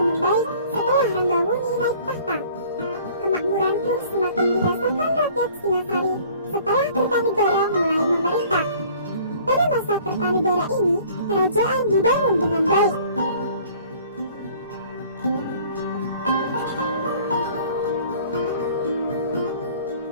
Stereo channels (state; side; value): inverted; both; correlation -0.52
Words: membaik setelah Ranggawuni naik tahta. Kemakmuran pun semakin dirasakan rakyat Singasari setelah Kertanegara mulai ini, kerajaan dibangun dengan baik.